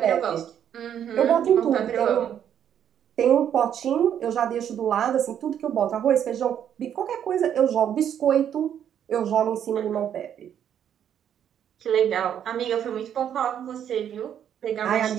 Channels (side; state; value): left; quieter; 9.4 dB